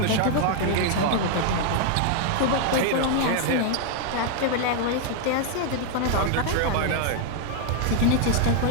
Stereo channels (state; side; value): different; both; correlation 0.00